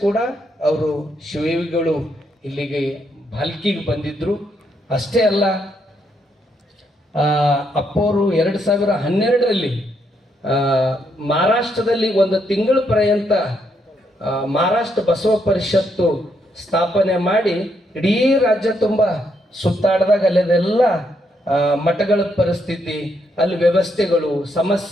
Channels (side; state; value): both; normal; correlation 0.76